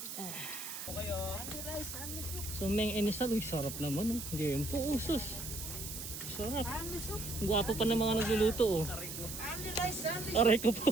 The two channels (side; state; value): right; noise; hiss, 8 dB below the sound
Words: So, Meng Inisal, uy, sarap naman, oh. Game po, oh, sus. Sarap. Gwapo pa ng mga nagluluto, oh. Aray ko